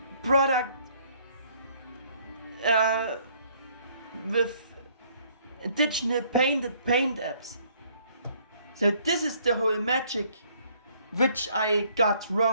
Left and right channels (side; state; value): both; inverted; correlation -0.63